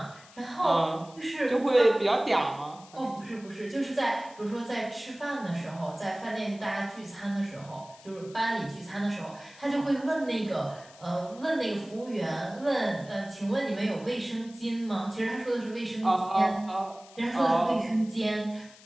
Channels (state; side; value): noise; left; hiss, 22 dB below the sound